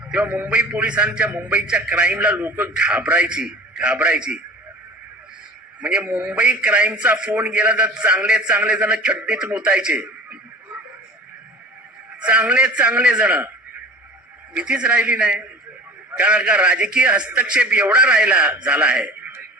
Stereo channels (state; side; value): normal; both; correlation 0.40